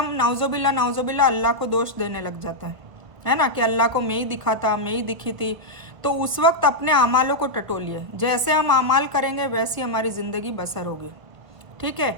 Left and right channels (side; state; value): left; late; 1.6 ms